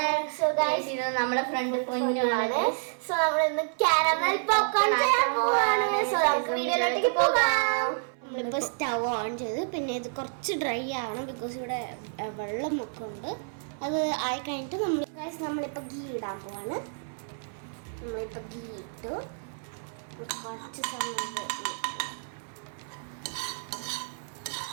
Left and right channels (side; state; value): left; silent; 58 dB below the other